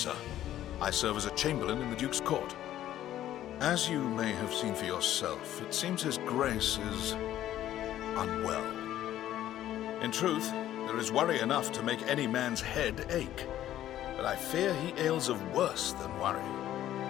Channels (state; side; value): quieter; right; 12.6 dB